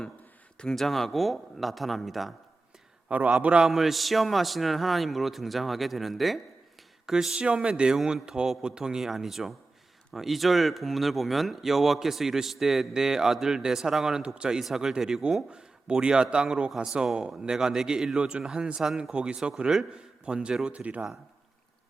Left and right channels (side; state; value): left; quieter; 3.4 dB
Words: 등장하고 나타납니다. 바로 아브라함을 시험하시는 하나님으로 등장하게 되는데 그 시험의 내용은 더 보통이 아니죠. 2절 본문을 보면 여호와께서 이르시되 내 아들 내 사랑하는 독자 이삭을 데리고 모리아 땅으로 가서 내가 내게 일러준 한 산 거기서 그를 번제로 드리라.